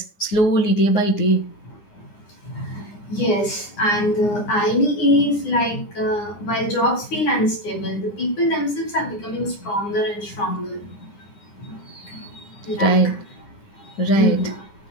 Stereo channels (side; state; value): right; late; 9.8 ms